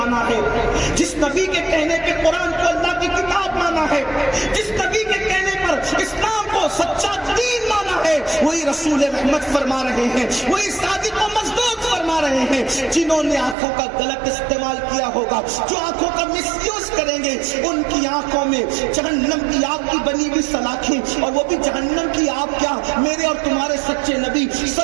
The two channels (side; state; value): left; drops out; at 13.6 s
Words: ہے، جس نبی کے کہنے پہ قرآن کو اللہ کی کتاب مانا ہے، جس نبی کے کہنے پر اسلام کو سچا دین مانا ہے، وہی رسول رحمت فرما رہے ہیں، وہی صادق و مصدوق فرما رہے ہیں. جنہوں نے آنکھوں کا غلط استعمال کیا ہوگا، جو آنکھوں کا مس یوز کریں گے، ان کی آنکھوں میں جہنم کی آگ کی بنی ہوئی سلاخیں، اور وہ بھی جہنم کی آگ کیا، میرے اور تمہارے سچے نبی